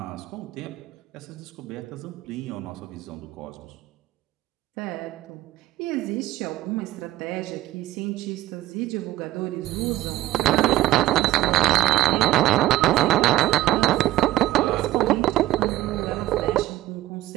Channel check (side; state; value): left; quieter; 15.6 dB